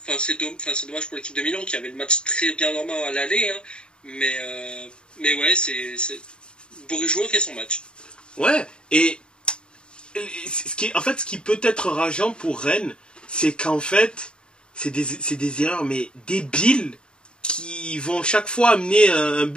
Enfin, c'est dommage pour l'équipe de Milan qui avait le match très bien normal à l'aller. Hein. Mais ouais, c'est Bourigeaud fait son match. Ouais, et ce qui peut être rageant pour Rennes, c'est qu'en fait, c'est des erreurs, mais débiles, qui vont chaque fois amener un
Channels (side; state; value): right; late; 0.051 ms